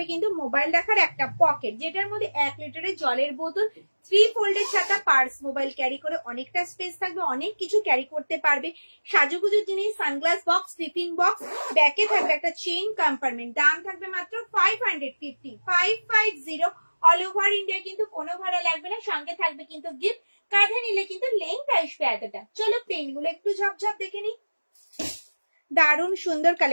কিন্তু মোবাইল রাখার একটা পকেট, যেটার মধ্যে 1 লিটারের জলের বোতল, 3 ফোল্ডের ছাতা, পার্স, মোবাইল ক্যারি করে অনেকটা স্পেস থাকবে, অনেক কিছু ক্যারি করতে পারবে। সাজুগুজুর জিনিস, সানগ্লাস বক্স, টিফিন বক্স, ব্যাকে থাকবে একটা চেইন কম্পার্টমেন্ট। দাম থাকবে মাত্র 550, 550। অল ওভার ইন্ডিয়া কিন্তু কোনো ভাড়া লাগবে না, সঙ্গে থাকবে কিন্তু গিফট। কাঁধে নিলে কিন্তু লেন্থ আসবে এতটা। চলো প্রিন্ট গুলো একটু ঝপঝপ দেখে নি, দারুণ সুন্দর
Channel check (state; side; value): inverted; both; correlation -1.00